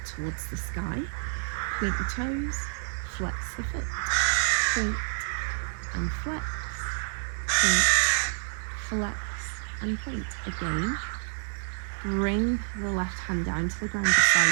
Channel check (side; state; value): left; silent; 59 dB below the other